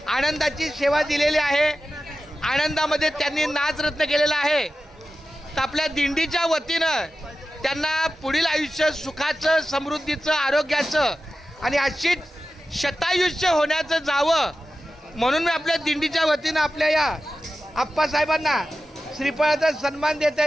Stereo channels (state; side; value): normal; both; correlation 0.93